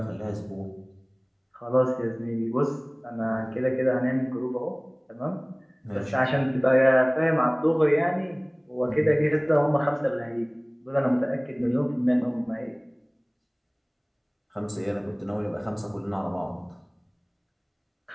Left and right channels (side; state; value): both; identical; correlation 1.00